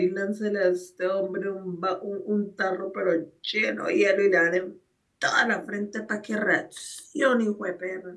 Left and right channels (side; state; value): both; identical; correlation 1.00